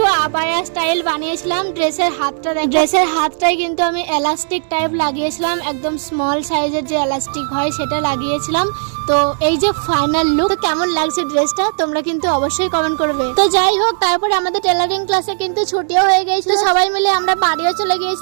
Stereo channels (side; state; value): left; silent; 69 dB below the other